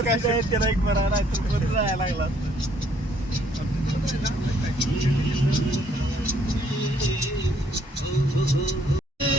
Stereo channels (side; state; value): both; normal; correlation 0.65